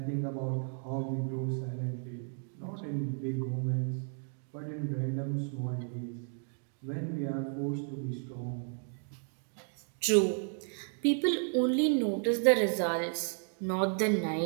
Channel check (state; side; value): silent; left; 56 dB below the other